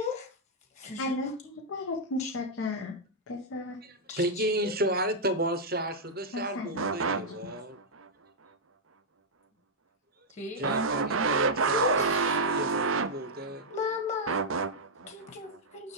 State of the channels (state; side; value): normal; both; correlation -0.05